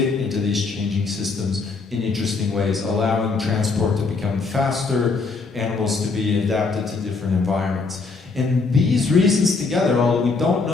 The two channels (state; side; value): quieter; right; 4.2 dB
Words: into these changing systems in interesting ways, allowing transport to become faster, animals to be adapted to different environments. And these reasons together, although we don't